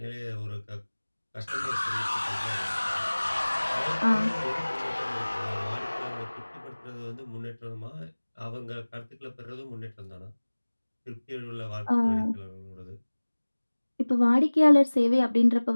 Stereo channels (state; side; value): inverted; both; correlation -1.00